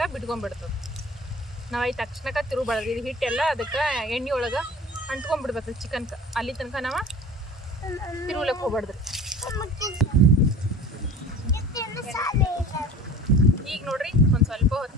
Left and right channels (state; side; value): normal; both; correlation 0.41